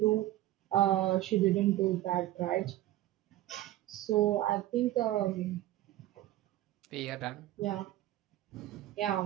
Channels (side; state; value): left; quieter; 14.9 dB